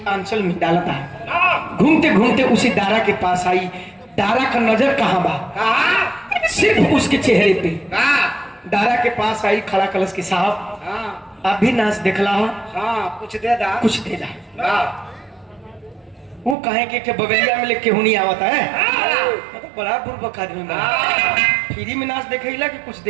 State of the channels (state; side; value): drops out; left; at 16.6 s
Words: आंचल में डालता है। घूमते घूमते उसी दारा के पास आई। दारा का नजर कहाँ बा, सिर्फ उसके चेहरे पे। दारा के पास आई, खड़ा कलश के साहब आप भी नाच देखला हो, कुछ दे दा, कुछ दे दा। वो कहे कि बगलिया में लेके हुनी आवता है, तो बड़ा बुर्बक आदमी बा। फ्री में नाच देखेला कि कुछ